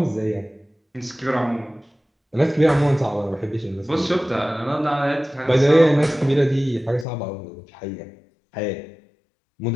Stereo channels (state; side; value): drops out; right; at 7.1 s